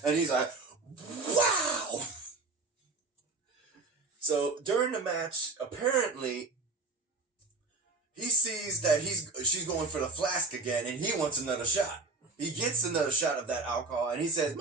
And he's like, wow! So during the match, apparently, he sees that she's going for the flask again, and he wants another shot. He gets another shot of that alcohol, and he says,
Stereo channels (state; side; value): quieter; left; 3.8 dB